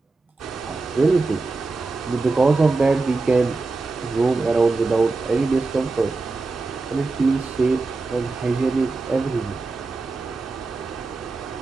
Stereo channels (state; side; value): quieter; left; 3.7 dB